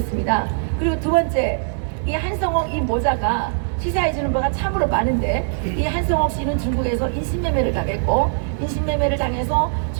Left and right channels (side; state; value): left; silent; digital silence